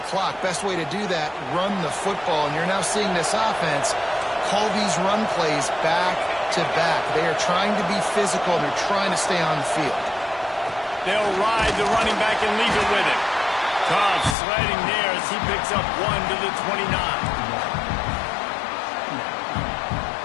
clock. Best way to do that, run the football. And you're now seeing this offense call these run plays back to back. They are trying to be physical. They're trying to stay on the field. They'll ride the running back and leave it with him. Cobb sliding there as he picks up 1 to the 29.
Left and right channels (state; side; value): drops out; right; at 14.4 s